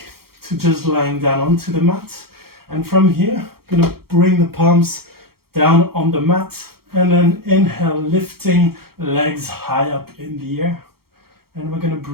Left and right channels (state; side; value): late; left; 0.94 ms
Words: to just lying down onto the mat. And from here, I'm going to bring the palms down on the mat. And then inhale, lifting legs high up in the air. And we're going to